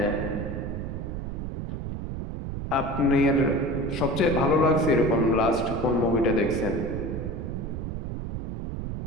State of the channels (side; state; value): right; noise; rumble, 5 dB below the sound